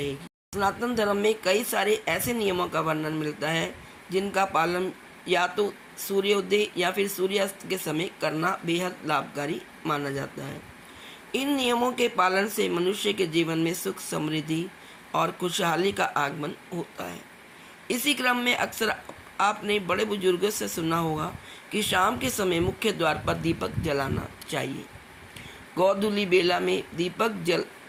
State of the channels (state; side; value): identical; both; correlation 1.00